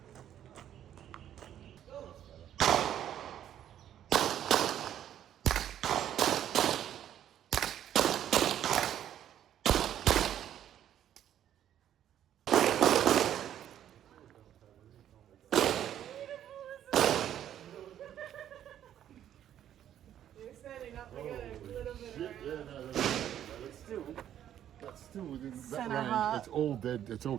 You're standing up, we got a little bit Shit, yeah, no, that's still within that Center range. heart. It's all dead. It's all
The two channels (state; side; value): quieter; left; 10.7 dB